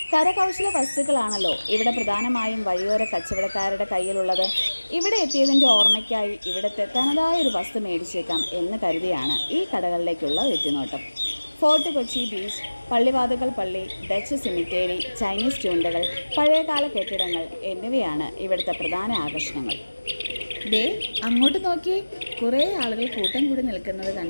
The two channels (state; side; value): inverted; both; correlation -1.00